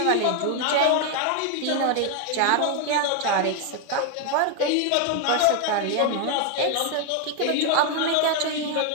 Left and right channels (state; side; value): different; both; correlation 0.01